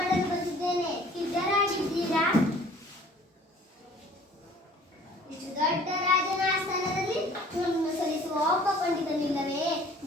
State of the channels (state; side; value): normal; both; correlation 0.52